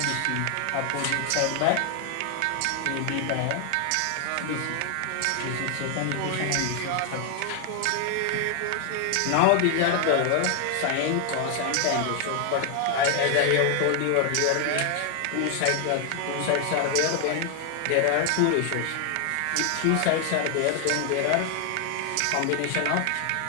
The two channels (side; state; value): both; different; correlation 0.00